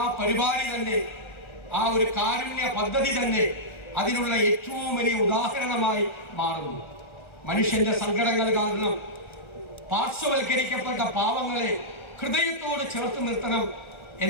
പരിപാടി തന്നെ, ആ ഒരു കാരുണ്യ പദ്ധതി തന്നെ അതിനുള്ള ഏറ്റവും വലിയ ഉദാഹരണമായി മാറുന്നു. മനുഷ്യന്റെ സങ്കടങ്ങൾ കാരണം പാർശ്വവൽക്കരിക്കപ്പെട്ട പാവങ്ങളെ ഹൃദയത്തോട് ചേർത്ത് നിർത്തണം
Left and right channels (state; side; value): late; right; 1.3 ms